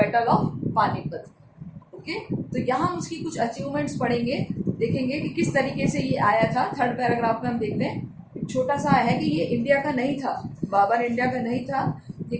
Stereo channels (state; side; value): identical; both; correlation 1.00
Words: of Panipat. Okay, तो यहाँ हम उसकी कुछ अचीवमेंट्स पढ़ेंगे, देखेंगे कि किस तरीके से ये आया था। थर्ड पैराग्राफ में हम देखते हैं, छोटा सा है कि ये इंडिया का नहीं था, बाबर इंडिया का नहीं था। ये